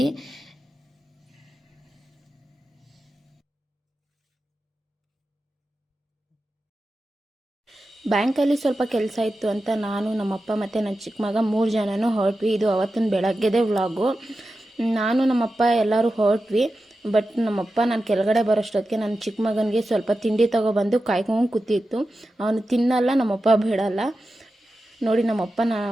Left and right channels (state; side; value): normal; both; correlation 0.92